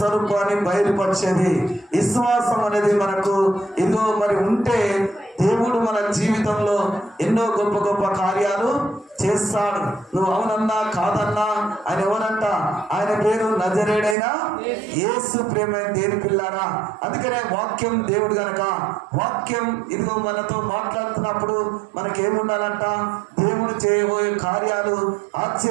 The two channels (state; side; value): drops out; left; at 14.2 s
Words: బయలుపరిచేది. విశ్వాసం అనేది మనకు ఇదిగో మరి ఉంటే దేవుడు మన జీవితంలో ఎన్నో గొప్ప గొప్ప కార్యాలు చేస్తాడు. నువ్వు అవునన్నా కాదన్నా ఆయన ఎవరంట? ఆయన పేరు నజరేయుడైన యేసు. ప్రేమైన దేవుని పిల్లారా, అందుకనే వాక్యం దేవుడు గనక వాక్యం ఇదిగో మనతో మాట్లాడుతున్నప్పుడు మనకేముండాలంట? దేవుడు చేయబోయే కార్యాలు,